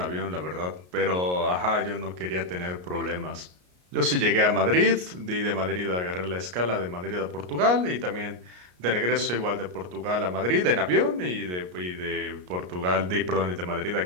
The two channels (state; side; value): late; left; 33 ms